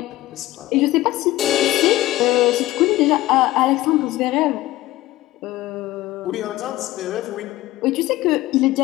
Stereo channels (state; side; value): quieter; right; 16.7 dB